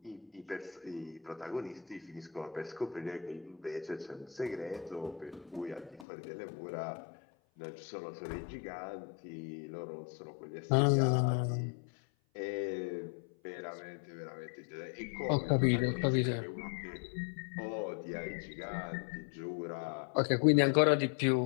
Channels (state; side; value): drops out; right; at 6.1 s